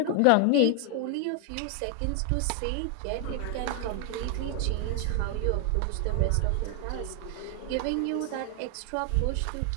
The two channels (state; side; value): different; both; correlation 0.00